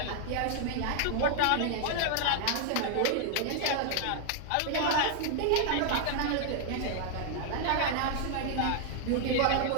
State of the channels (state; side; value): different; both; correlation 0.00